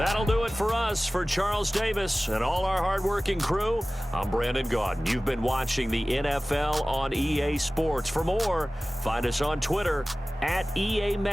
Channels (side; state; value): both; normal; correlation 0.97